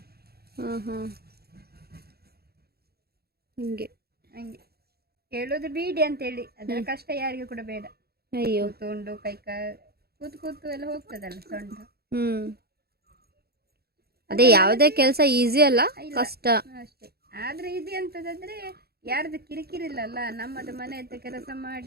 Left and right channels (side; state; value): left; late; 0.46 ms